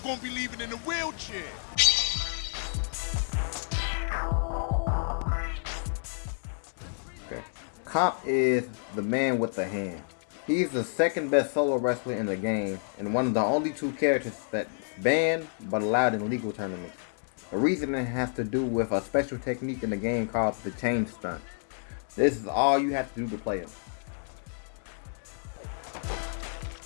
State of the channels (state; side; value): silent; right; digital silence